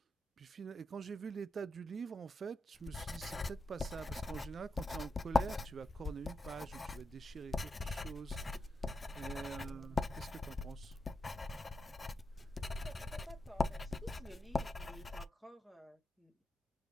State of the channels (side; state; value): both; normal; correlation 0.86